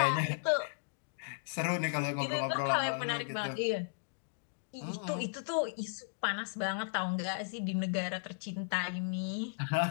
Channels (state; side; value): silent; right; digital silence